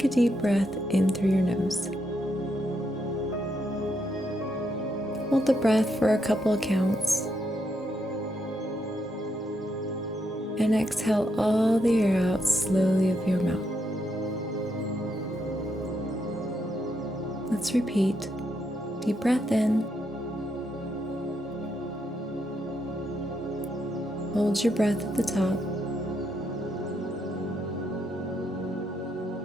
a deep breath in through your nose. Hold the breath for a couple of counts. And exhale all the air out slowly of your mouth. Let's repeat. Deep breath in. Hold your breath at the top.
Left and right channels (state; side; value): normal; both; correlation 0.79